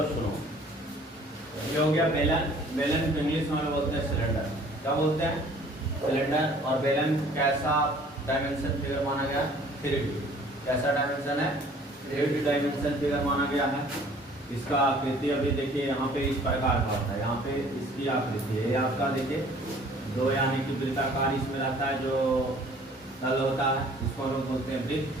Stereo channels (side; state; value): both; normal; correlation 0.54